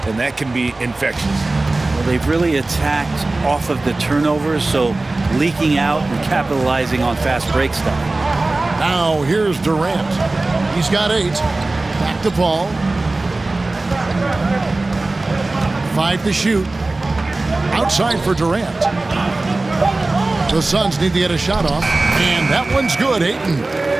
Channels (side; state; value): left; quieter; 3.1 dB